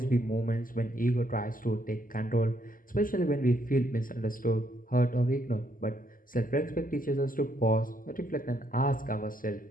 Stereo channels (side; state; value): right; late; 0.41 ms